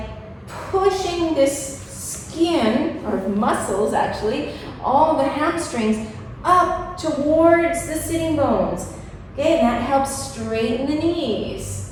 pushing this skin, or muscles actually, all the hamstrings, up towards the sitting bones. Okay, and that helps straighten the knees.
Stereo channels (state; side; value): identical; both; correlation 1.00